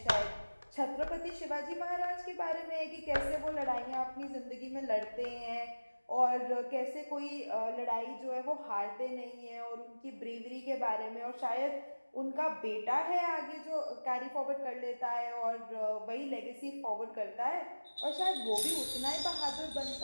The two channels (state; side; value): inverted; both; correlation -1.00